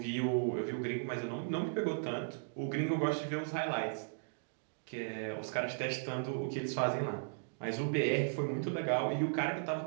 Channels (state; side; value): silent; left; digital silence